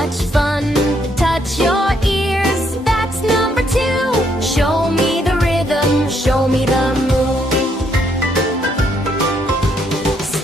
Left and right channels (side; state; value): both; normal; correlation 0.72